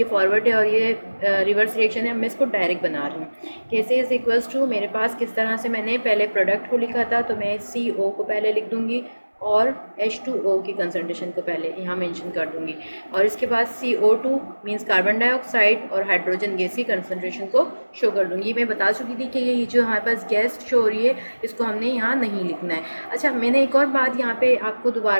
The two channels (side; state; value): both; inverted; correlation -1.00